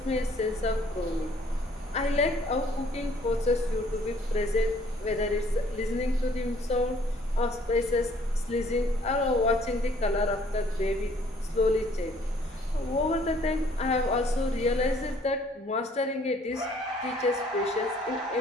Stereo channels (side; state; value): both; normal; correlation 0.60